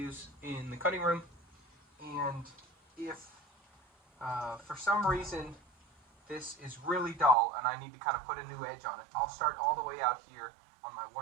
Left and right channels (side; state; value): left; drops out; at 7.4 s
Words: in the cutting room, and if for some reason this is really dull and I need to kind of put a new edge on it, I'll start all the way out here on my